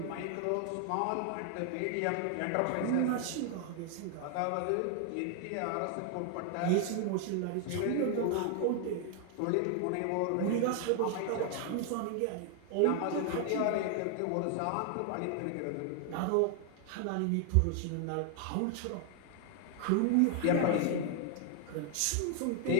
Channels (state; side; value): different; both; correlation 0.00